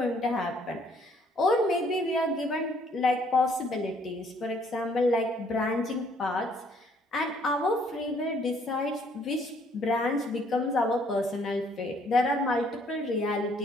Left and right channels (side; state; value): both; normal; correlation 0.64